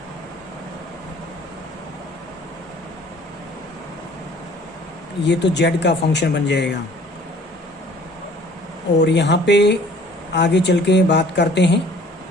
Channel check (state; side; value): normal; both; correlation 0.52